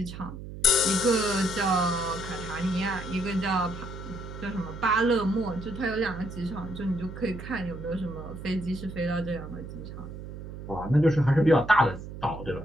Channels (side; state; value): right; noise; hum, 10 dB below the sound